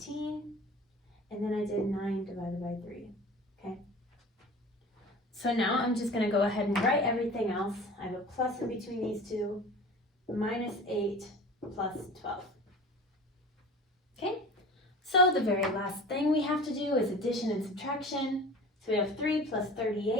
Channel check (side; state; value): both; normal; correlation 0.39